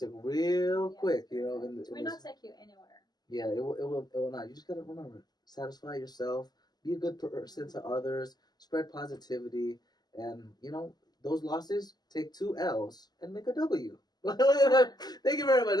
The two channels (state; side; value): late; right; 0.20 ms